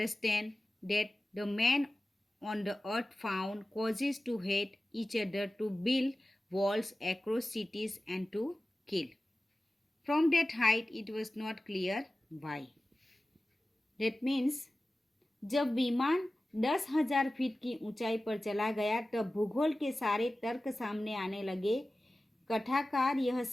that the men on the earth found causes to hate each other, to build walls across cities, and to kill. From that height, it was not clear why. That means जब विमान 10,000 feet की ऊंचाई पर चला गया तब भूगोल के सारे तर्क सामने आने लगे। कथाकार यह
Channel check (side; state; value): both; normal; correlation 0.96